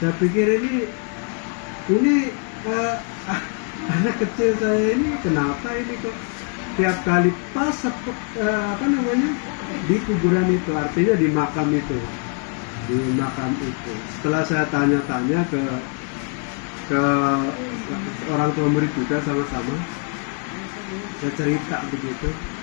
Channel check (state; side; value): quieter; right; 39.0 dB